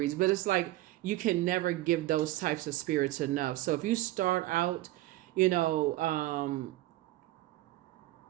But it's like you can never give those types of spirits enough. So if you start out, if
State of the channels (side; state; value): left; quieter; 16.8 dB